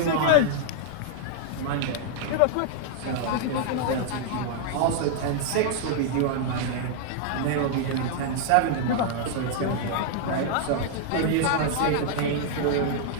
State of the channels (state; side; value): different; both; correlation -0.01